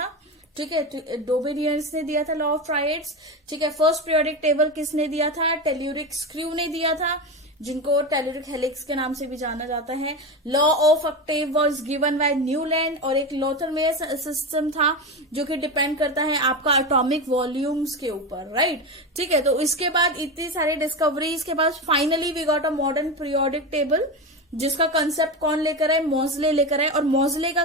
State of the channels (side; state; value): both; normal; correlation 0.19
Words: ठीक है। डोबेनियर्स ने दिया था लॉ ऑफ ट्रायड्स, ठीक है। फर्स्ट पीरियोडिक टेबल किसने दिया था? टेल्यूरिक स्क्रू ने दिया था, जिनको टेल्यूरिक हेलिक्स के नाम से भी जाना जाता है। Law of octave was given by Newland, और एक लोथरमेयर सिस्टम था जो कि डिपेंड करता है आपका एटॉमिक वॉल्यूम्स के ऊपर, राइट, ठीक है। तो इसके बाद इतनी सारी डिस्कवरीज के बाद finally we got a modern periodic table, जिसका कंसेप्ट कौन लेकर आए? मोज़ले लेकर आए। और मोज़ले का